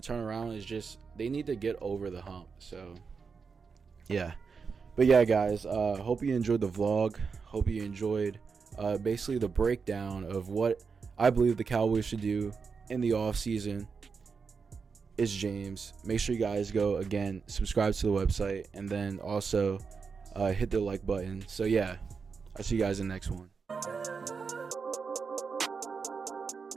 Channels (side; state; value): left; quieter; 5.3 dB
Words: turn around, it's just they need to get over the hump. So yeah, but yeah, guys, hope you enjoyed the vlog. Hope you enjoyed basically the breakdown of what I believe the Cowboys should do in the offseason. It's James. Make sure you guys go again, subscribe to the website, and then also hit the like button. So yeah, I'll see you guys in the next one.